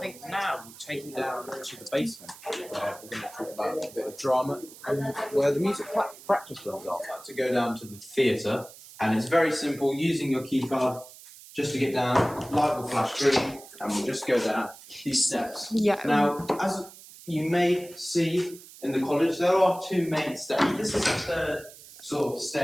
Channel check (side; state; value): right; noise; hiss, 19 dB below the sound